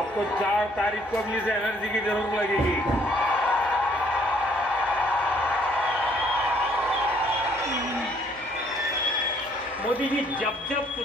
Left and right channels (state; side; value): noise; left; hum, 26 dB below the sound